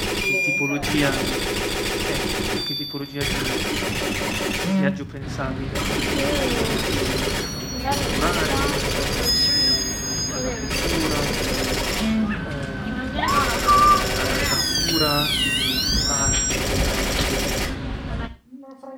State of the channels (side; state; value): both; identical; correlation 1.00